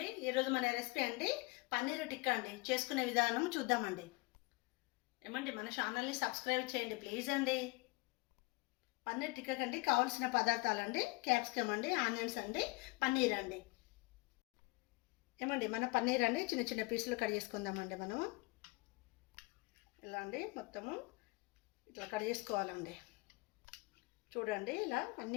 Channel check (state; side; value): quieter; right; 24.5 dB